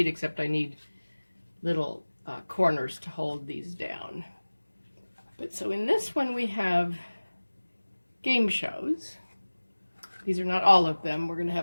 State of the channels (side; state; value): both; inverted; correlation -1.00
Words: except I need little corners to hold these down. But so in this one we have game shows. These are not all of them. We're going to